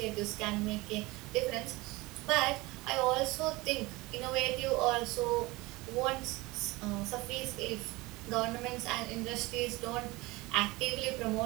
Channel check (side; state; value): left; quieter; 22.0 dB